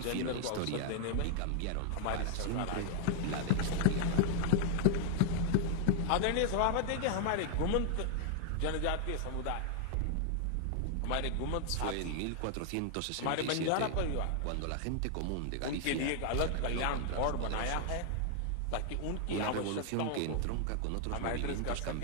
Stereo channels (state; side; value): different; both; correlation 0.00